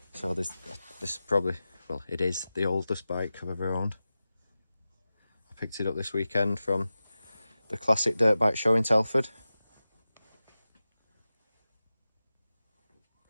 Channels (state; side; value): inverted; both; correlation -0.94